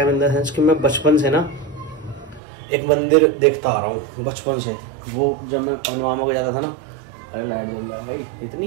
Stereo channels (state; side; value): drops out; left; at 2.4 s